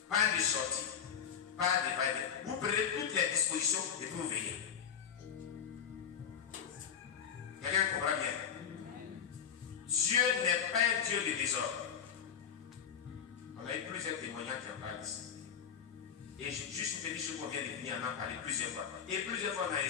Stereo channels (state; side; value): quieter; right; 7.9 dB